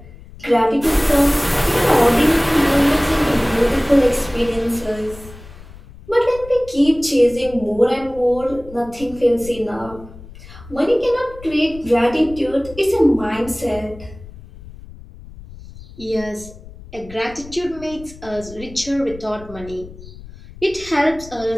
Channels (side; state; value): left; noise; rumble, 18 dB below the sound